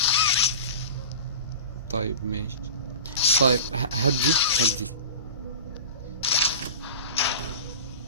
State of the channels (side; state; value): both; inverted; correlation -0.33